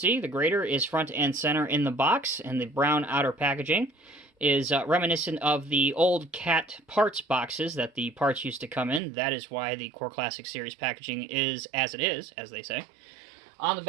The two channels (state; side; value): drops out; left; at 9.0 s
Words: the grader is front and center in the box, and the brown outer packaging is reminiscent of the old CAT parts boxes that the parts used to come in. That is why the Core Classic Series packaging is as it is, as they say. On the